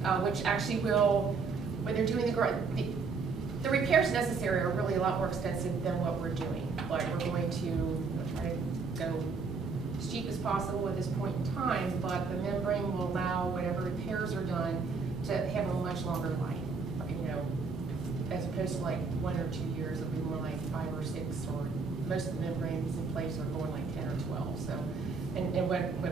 which actually will, when they're doing the repairs necessary are really a lot more extensive than what we're doing. Like we're going to try to go as cheap as possible at this point in time, but the membrane will allow whatever repairs are done to have a much longer life. You know, as opposed to like 1 or 2 years, it'll be more like 5 or 6, or most of the membranes in place are going like 10 or 12. So, and what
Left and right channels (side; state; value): left; quieter; 4.7 dB